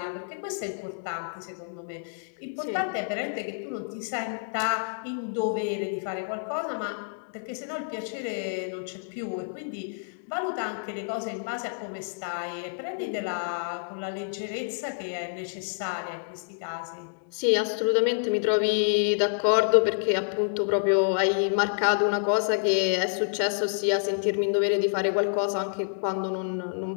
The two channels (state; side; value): silent; right; digital silence